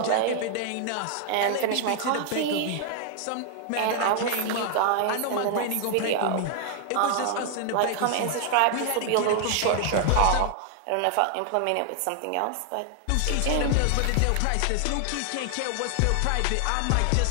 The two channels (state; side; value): different; both; correlation 0.00